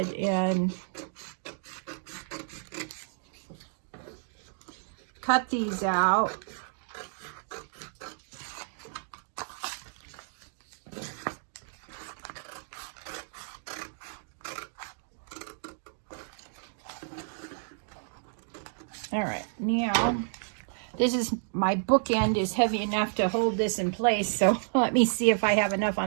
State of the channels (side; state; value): left; silent; digital silence